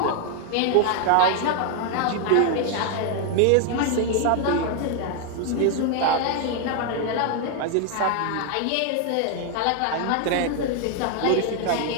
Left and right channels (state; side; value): different; both; correlation 0.00